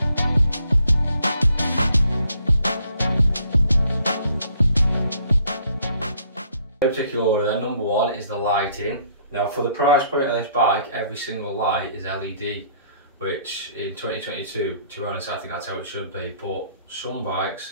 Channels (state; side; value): inverted; both; correlation -0.64